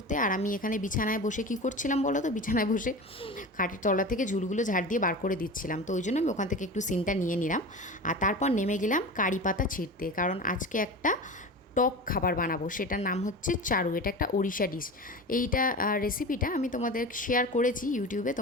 আর আমি এখানে বিছানায় বসে কী করছিলাম বলো তো, বিছানায় বসে খাটের তলা থেকে ঝুলগুলো ঝাড় দিয়ে বার করে দিচ্ছিলাম। তো ওই জন্য আমি ওখান থেকে একটু সিনটা নিয়ে নিলাম। আর তারপর নেমে গেলাম কারি পাতা ছিঁড়তে, কারণ আজকে একটা টক খাবার বানাবো, সেটার নাম হচ্ছে চারু। এটা একটা ওড়িশা ডিশ। এইটা রেসিপিটা আমি তোমাদের শেয়ার করেছি ইউটিউবে,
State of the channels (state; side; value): normal; both; correlation 0.31